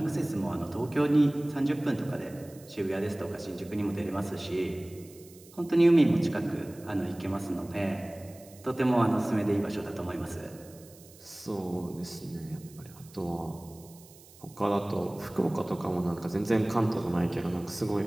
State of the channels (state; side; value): noise; right; hiss, 23 dB below the sound